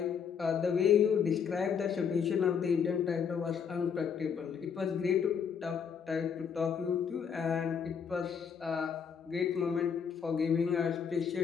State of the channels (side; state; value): right; quieter; 6.9 dB